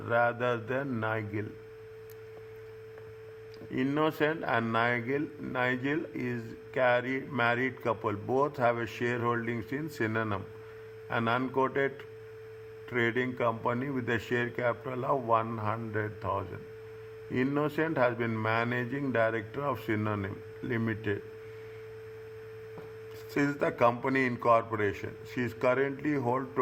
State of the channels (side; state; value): both; identical; correlation 1.00